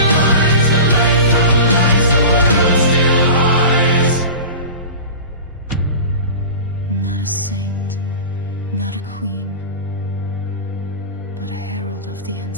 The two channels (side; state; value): both; inverted; correlation -0.33